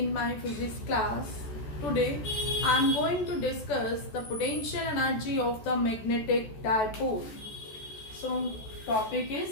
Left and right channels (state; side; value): late; right; 14 ms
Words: my physics class. Today I am going to discuss the potential energy of the magnetic dipole. So topic